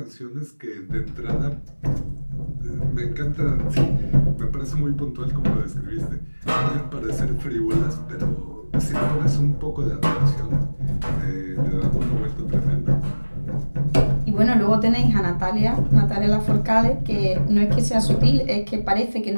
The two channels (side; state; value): both; inverted; correlation -1.00